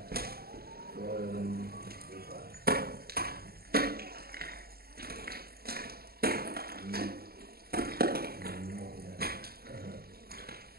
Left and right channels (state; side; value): late; left; 0.45 ms